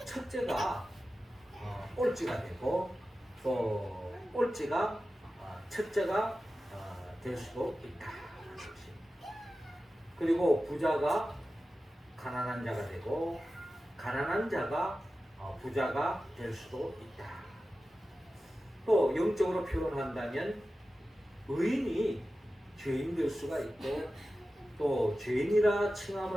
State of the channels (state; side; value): normal; both; correlation 0.94